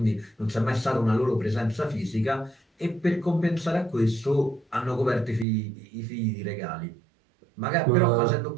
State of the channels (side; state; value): left; drops out; at 5.5 s